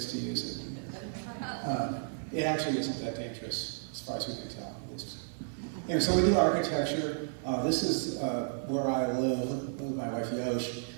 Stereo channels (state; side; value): silent; left; digital silence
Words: to use it. It actually isn't that dangerous. as far as we can tell, at least. So we do architecture. This is where I live with my wife Yosh,